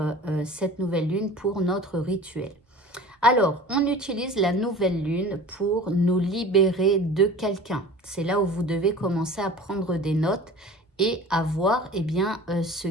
cette nouvelle lune pour notre rituel? Alors, on utilise la nouvelle lune pour nous libérer de quelqu'un. C'est là où vous devez commencer à prendre des notes et à voir ce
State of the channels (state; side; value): normal; both; correlation 0.40